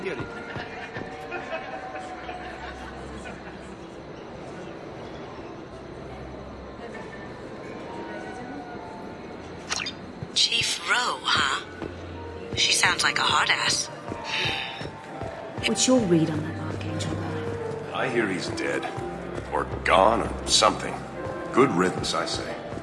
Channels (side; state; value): both; identical; correlation 1.00